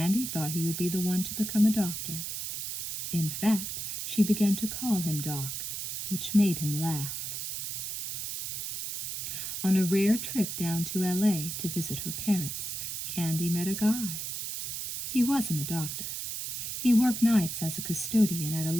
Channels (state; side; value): noise; right; hiss, 5 dB below the sound